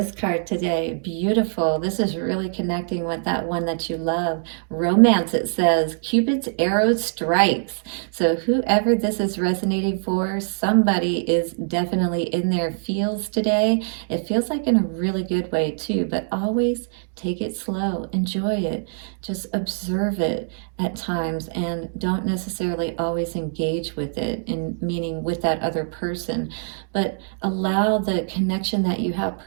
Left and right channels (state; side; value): silent; left; digital silence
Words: card today. Beautiful. This is really connecting with that one that you love. Romance, it says. Cupid's arrow strikes. So whoever this is resonating for, somebody is definitely in their feels today. It feels like in a really good way too, but always take it slow. Enjoy it. Just observe it at times, and don't necessarily always engage with it, in meaning with that other person, but allow the connection that you have